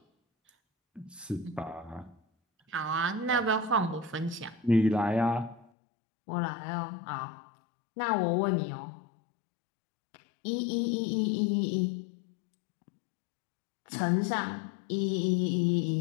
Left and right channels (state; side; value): drops out; right; at 5.7 s